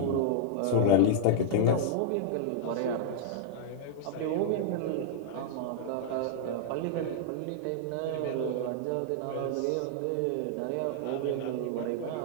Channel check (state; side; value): different; both; correlation -0.01